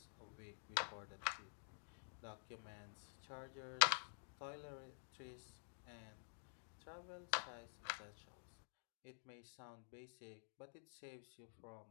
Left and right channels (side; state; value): right; silent; digital silence